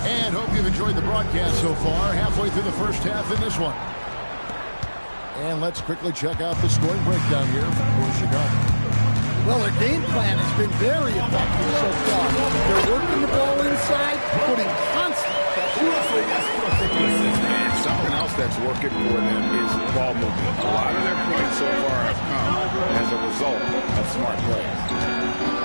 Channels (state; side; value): inverted; both; correlation -1.00